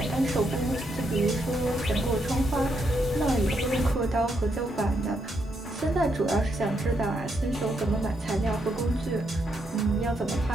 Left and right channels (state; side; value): normal; both; correlation 0.78